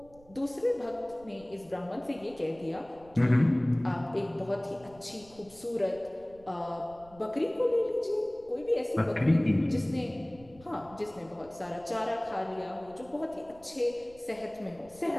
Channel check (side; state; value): right; noise; rumble, 24 dB below the sound